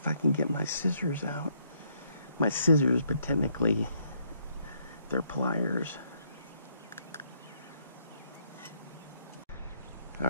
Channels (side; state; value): both; inverted; correlation -0.71